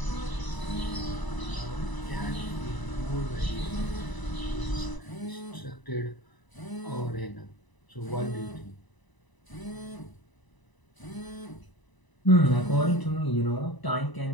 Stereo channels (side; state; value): right; late; 1.0 ms